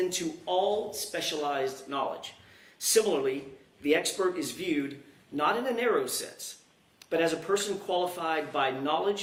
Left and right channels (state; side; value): identical; both; correlation 1.00